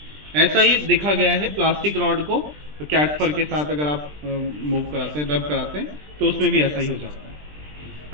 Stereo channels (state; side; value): late; left; 20 ms